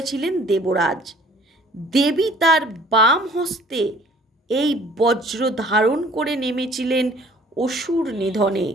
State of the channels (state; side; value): normal; both; correlation 0.53